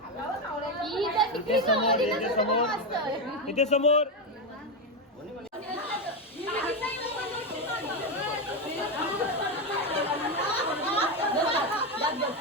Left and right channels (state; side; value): normal; both; correlation 0.10